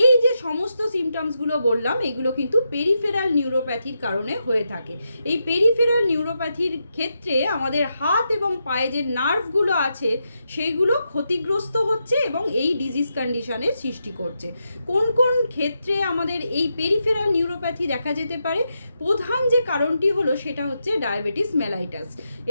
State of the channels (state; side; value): inverted; both; correlation -0.85